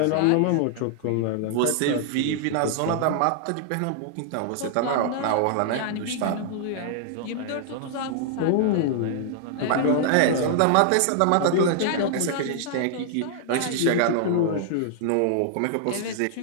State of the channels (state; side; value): different; both; correlation -0.01